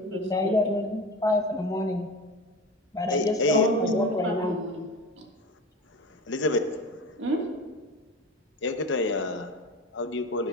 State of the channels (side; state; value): both; normal; correlation 0.31